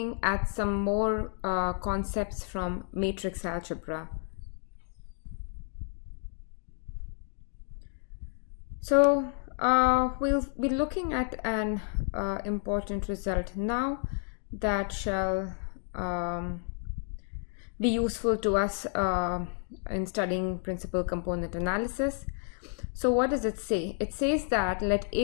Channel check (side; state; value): right; silent; 57 dB below the other